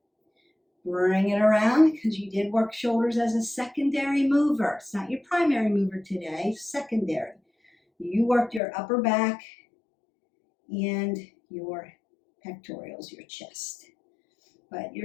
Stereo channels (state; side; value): drops out; right; at 8.6 s